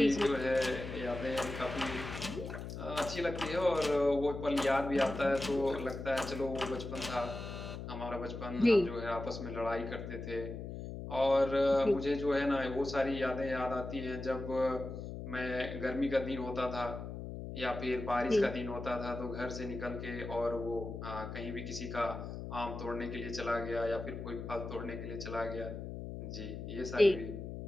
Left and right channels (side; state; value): left; noise; hum, 8 dB below the sound